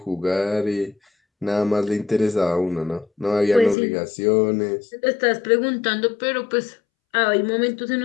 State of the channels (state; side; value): drops out; right; at 3.8 s